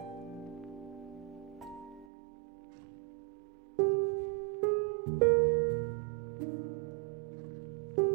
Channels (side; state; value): left; drops out; at 2.1 s